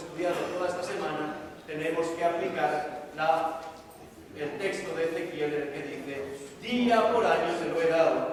toda esta semana, tenemos que aplicar el texto de Ezequiel, en el que dice, día por año se lo he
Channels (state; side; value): identical; both; correlation 1.00